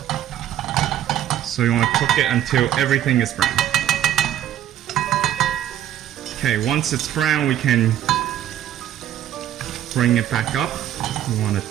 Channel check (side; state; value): left; quieter; 11.7 dB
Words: So you want to cook it until everything is brown. Okay, once it's brown, we can bring it back up. We want